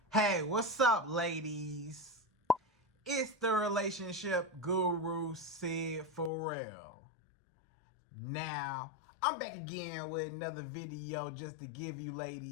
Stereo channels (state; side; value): drops out; right; at 6.3 s